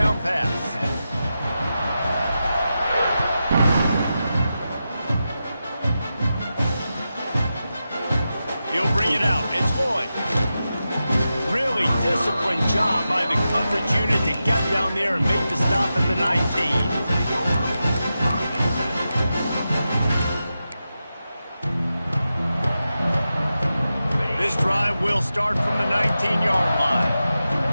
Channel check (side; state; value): both; inverted; correlation -0.90